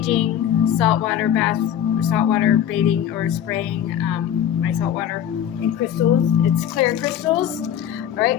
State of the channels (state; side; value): quieter; right; 10.0 dB